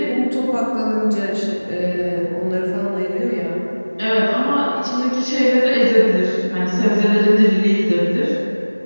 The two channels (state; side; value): inverted; both; correlation -1.00